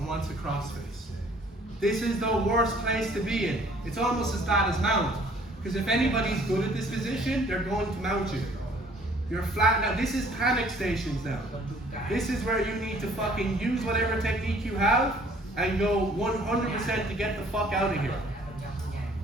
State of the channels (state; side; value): normal; both; correlation 0.57